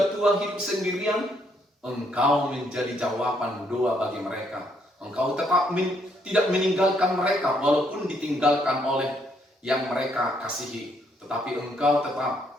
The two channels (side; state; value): both; normal; correlation 0.71